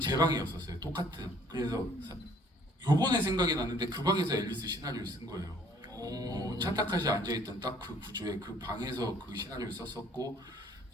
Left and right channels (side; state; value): both; normal; correlation 0.59